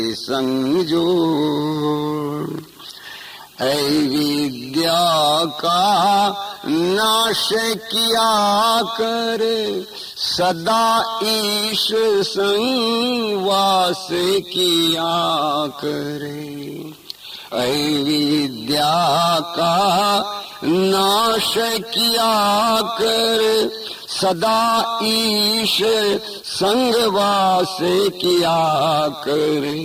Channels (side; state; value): both; identical; correlation 1.00